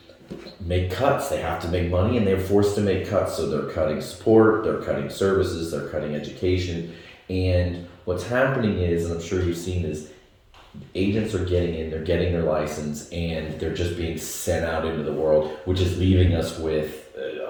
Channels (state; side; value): identical; both; correlation 1.00